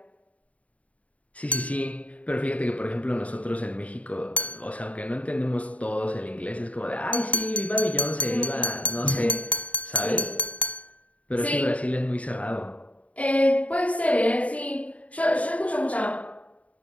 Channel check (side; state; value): right; late; 0.067 ms